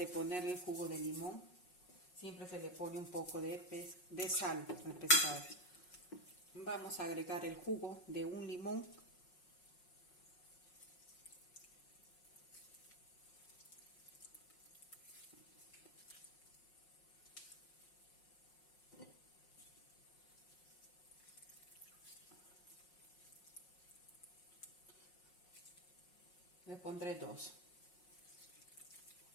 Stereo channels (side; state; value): right; late; 5.5 ms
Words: ponerle el jugo de limón. Siempre se le pone un poco de sal al pescado. Vamos a agregar el jugo de un limón. Le pondré 2.